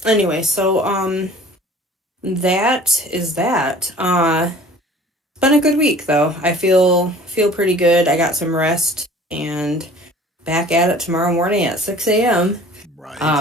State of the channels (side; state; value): both; normal; correlation 0.47